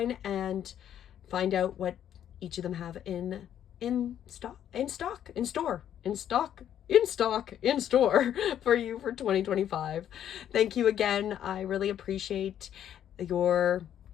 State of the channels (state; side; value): quieter; right; 10.2 dB